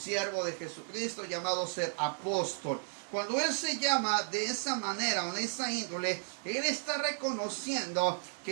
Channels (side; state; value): left; silent; 55 dB below the other